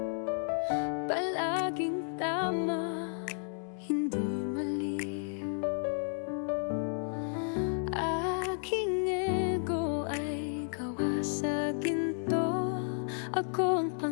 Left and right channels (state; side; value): silent; right; 56 dB below the other